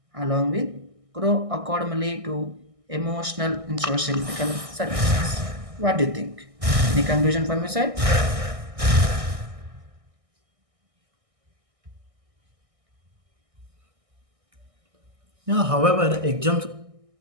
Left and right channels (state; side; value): late; left; 1.6 ms